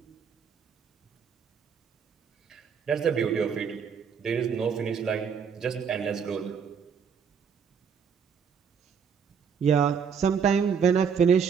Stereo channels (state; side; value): quieter; left; 6.7 dB